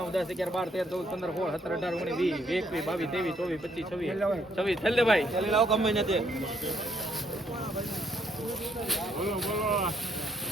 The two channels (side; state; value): both; normal; correlation 0.70